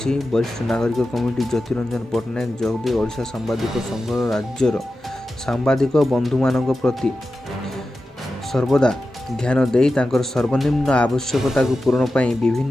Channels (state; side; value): normal; both; correlation 0.93